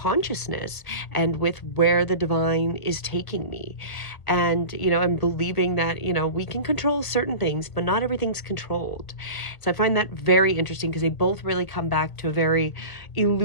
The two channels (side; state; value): right; late; 1.4 ms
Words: and with where the divine is taking me. And, I'm believing that, we can control certain things, but not everything's controlled. So I find that very interesting because they both really come back to a very